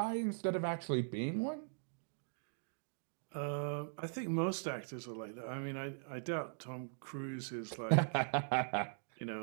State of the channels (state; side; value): silent; left; digital silence